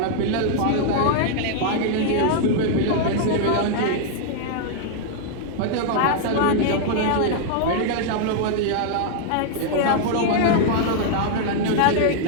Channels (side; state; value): both; different; correlation -0.01